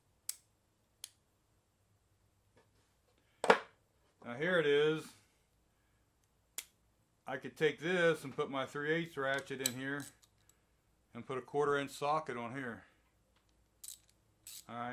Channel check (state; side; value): identical; both; correlation 1.00